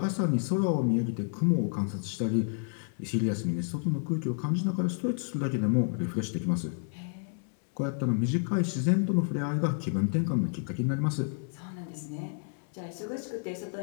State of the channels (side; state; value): right; silent; 58 dB below the other